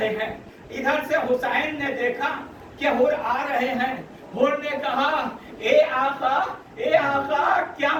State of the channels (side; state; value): both; identical; correlation 1.00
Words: ہیں, ادھر سے حسین نے دیکھا کہ حر آ رہے ہیں. حر نے کہا اے آقا کیا